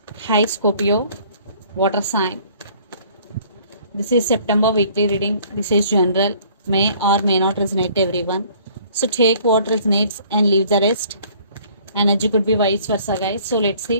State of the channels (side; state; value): both; inverted; correlation -0.56